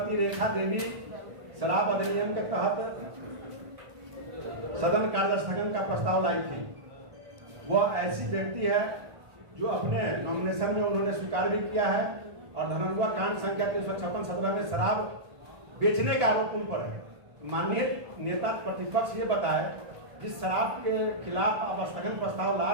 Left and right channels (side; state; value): left; late; 1.5 ms